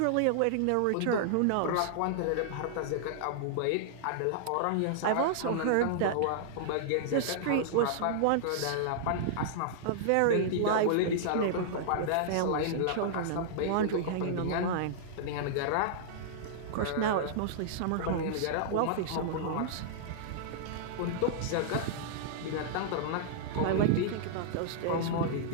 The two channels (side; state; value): both; different; correlation -0.01